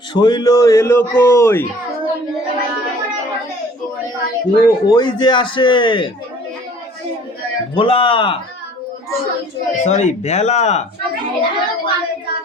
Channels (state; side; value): normal; both; correlation 0.52